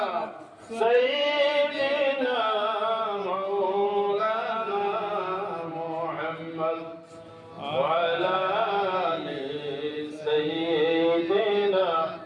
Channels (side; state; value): both; identical; correlation 1.00